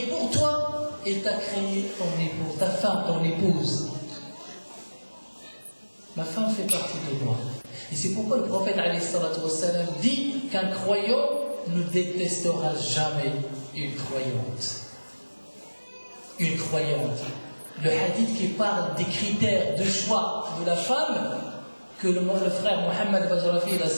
pour toi, et t'a créé ton épouse, ta femme, ton épouse. Ma femme fait partie de moi. Et c'est pourquoi le prophète alayhi salatu wassalam dit qu'un croyant ne détestera jamais une croyante. Une croyante. Le hadith qui parle des critères de choix de la femme, que le frère Mohammed Bajrafi a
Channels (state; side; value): inverted; both; correlation -1.00